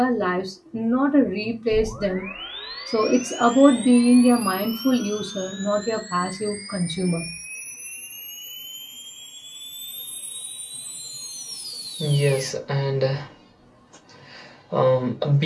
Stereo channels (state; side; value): identical; both; correlation 1.00